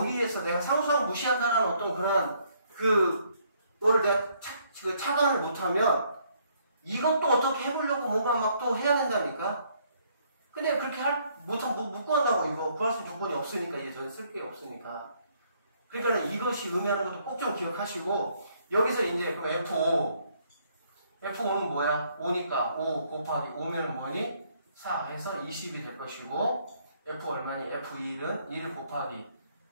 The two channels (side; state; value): both; inverted; correlation -0.68